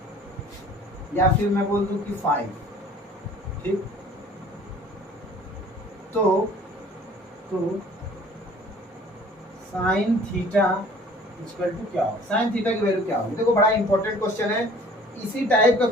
या फिर मैं बोल दूं कि 5। ठीक, तो साइन थीटा इक्वल टू क्या हो, साइन थीटा की वैल्यू क्या होगी। देखो बड़ा इंपॉर्टेंट क्वेश्चन है, इसी टाइप का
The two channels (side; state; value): both; normal; correlation 0.51